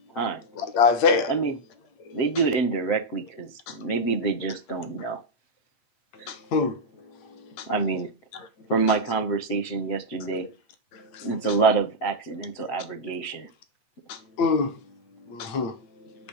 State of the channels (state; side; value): late; right; 8.7 ms